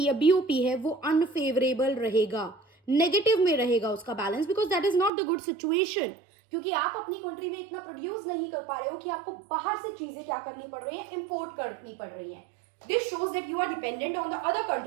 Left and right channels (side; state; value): left; drops out; at 5.1 s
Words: या बीओपी है वो अनफेवरेबल रहेगा, नेगेटिव में रहेगा उसका balance, because that is not the good situation. क्योंकि आप अपनी कंट्री में इतना प्रोड्यूस नहीं कर पा रहे हो कि आपको बाहर से चीजें क्या करनी पड़ रही है, इंपोर्ट करनी पड़ रही है। This shows that you are dependent on the other